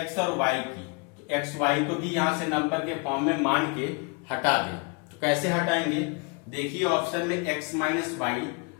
और y की, तो x y को भी यहाँ से नंबर के फॉर्म में मान के हटा दें। तो कैसे हटाएंगे? देखिए ऑप्शन में x माइनस वाई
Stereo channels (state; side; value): quieter; right; 31.5 dB